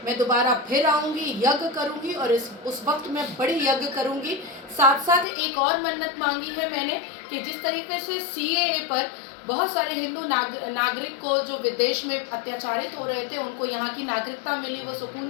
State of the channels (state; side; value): drops out; right; at 5.2 s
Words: मैं दोबारा फिर आऊँगी, यज्ञ करूँगी और उस वक्त मैं बड़ी यज्ञ करूँगी। साथ साथ एक और मन्नत मांगी है मैंने कि जिस तरीके से CAA पर बहुत सारे हिंदू नागरिक को जो विदेश में अत्याचारित हो रहे थे, उनको यहाँ की नागरिकता मिली, वो सुकून